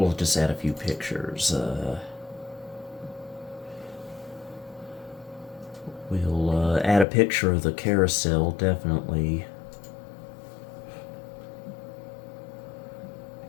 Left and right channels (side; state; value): right; drops out; at 7.1 s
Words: just add a few pictures. We'll add a picture of the carousel, definitely.